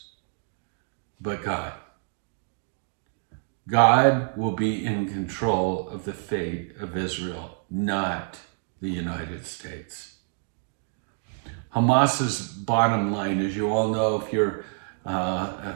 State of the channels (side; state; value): left; silent; 60 dB below the other